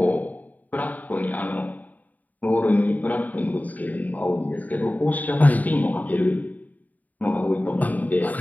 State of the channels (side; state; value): right; late; 0.078 ms